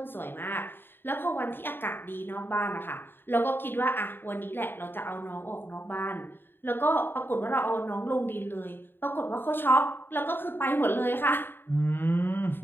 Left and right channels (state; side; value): late; right; 0.10 ms